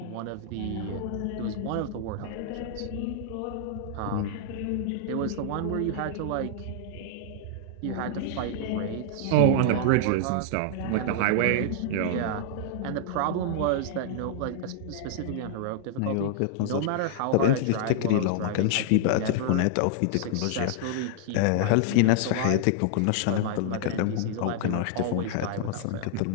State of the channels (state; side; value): different; both; correlation -0.01